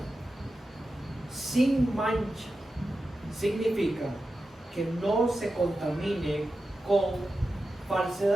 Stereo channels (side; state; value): both; normal; correlation 0.91